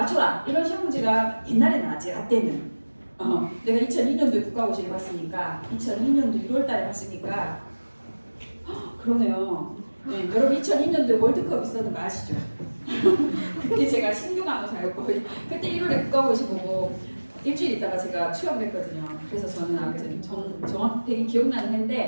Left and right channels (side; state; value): both; inverted; correlation -1.00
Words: 이런 시험 문제가 옛날에 나왔지. 라떼는 내가 2002년도에 국가고시를 봤으니까 2002년도 6월달에 봤으니까 그러네요. 네, 여러분 2002년도에 월드컵 있었는 거 아시죠? 그때 제가 신규간호사였고 그때 1월에 국가고시 보고 일주일 있다가 제가 취업을 했거든요. 그래서 저는 아무튼 정확히 기억나는